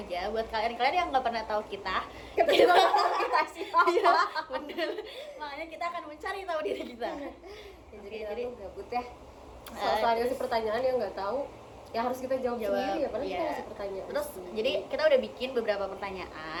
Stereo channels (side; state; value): both; identical; correlation 1.00